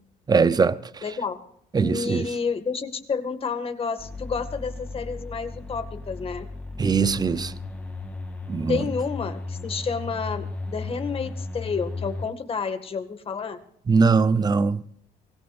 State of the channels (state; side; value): normal; both; correlation 0.70